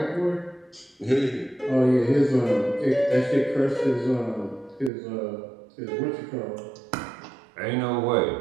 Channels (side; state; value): left; drops out; at 4.9 s